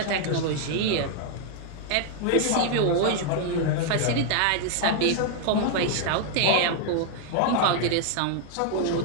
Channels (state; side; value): different; both; correlation 0.00